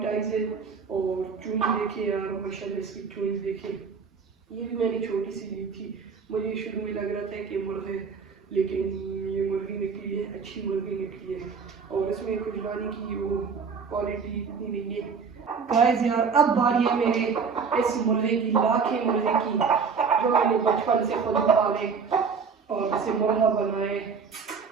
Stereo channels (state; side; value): quieter; left; 5.6 dB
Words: आईज है और चूंज देखिए यार माशाल्लाह, इसकी चूंज देखिए। ये भी मैंने छोटी सी ली थी, मुझे शुरू में लग रहा था कि मुर्गे, लेकिन ये मुर्गी निकली है, अच्छी मुर्गी निकली है और इसमें कुछ लाने की वो क्वालिटी इतनी नहीं है। गाइस यार अब बारी है मेरे इस मुर्गे की, लाखे मुर्गे की, जो मैंने बचपन से खुद पाले और इसे मुर्गा बनाए।